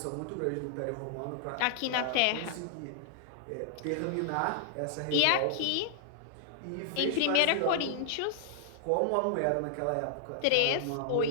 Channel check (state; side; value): different; both; correlation -0.01